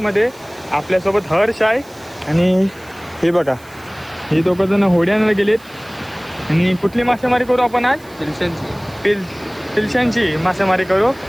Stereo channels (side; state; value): right; noise; hiss, 25 dB below the sound